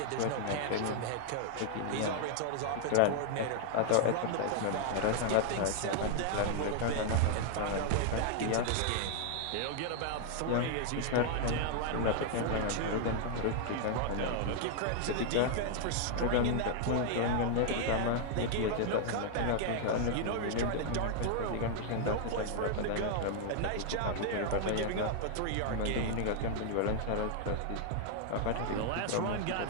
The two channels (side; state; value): both; different; correlation 0.00